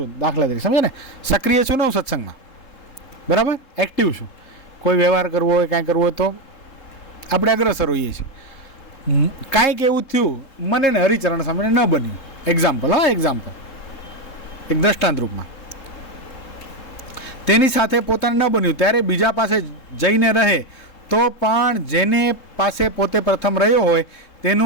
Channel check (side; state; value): right; late; 3.7 ms